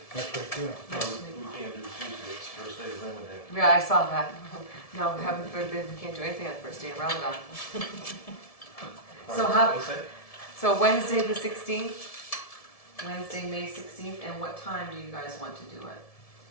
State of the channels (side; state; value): right; late; 1.7 ms